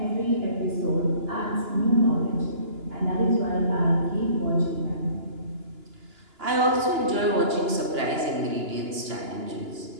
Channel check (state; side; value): late; left; 2.9 ms